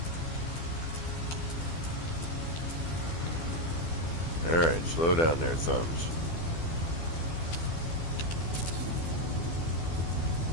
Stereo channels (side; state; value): right; late; 12 ms